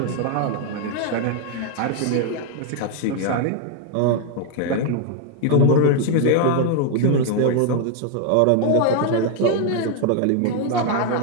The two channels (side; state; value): both; different; correlation 0.00